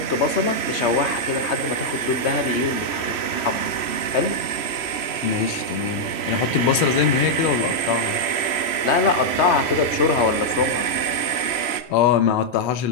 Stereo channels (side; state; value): right; late; 3.0 ms